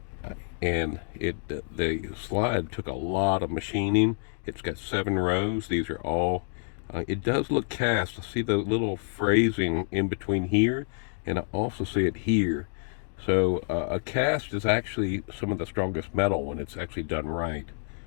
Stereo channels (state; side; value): silent; right; 59 dB below the other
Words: the slide took a lot of machining. It's got 7 rows. These are all. It does look cast. I see the little phrasing in between here, and I also see it here. So a cast is actually some of the strongest metal when it's actually done right,